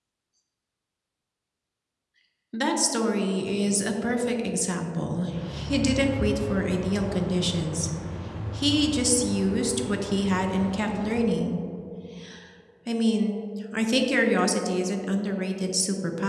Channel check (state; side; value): identical; both; correlation 1.00